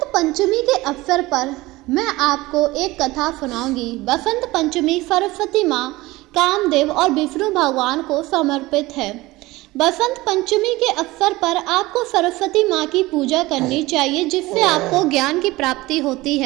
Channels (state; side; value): quieter; left; 19.8 dB